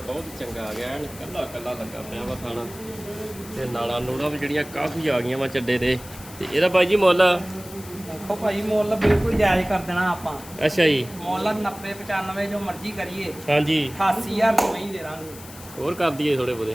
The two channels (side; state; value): left; noise; hiss, 17 dB below the sound